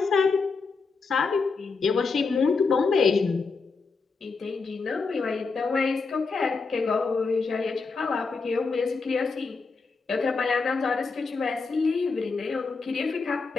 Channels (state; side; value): quieter; right; 4.5 dB